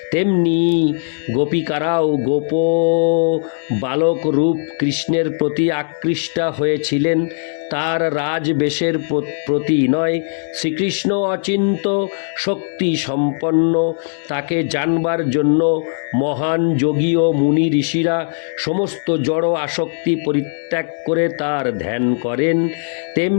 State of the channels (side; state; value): right; silent; digital silence